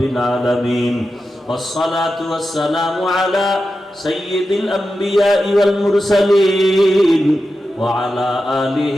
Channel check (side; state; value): both; normal; correlation 0.91